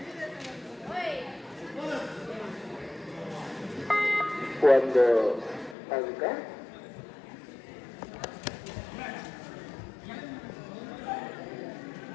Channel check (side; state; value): right; drops out; at 5.8 s